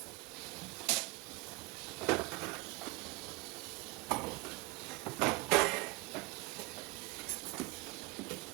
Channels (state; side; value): quieter; left; 24.5 dB